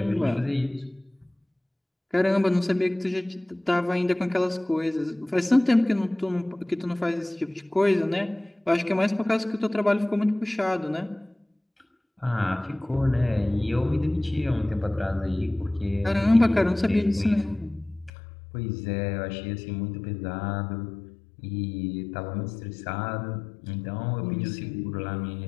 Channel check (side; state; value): right; drops out; at 18.1 s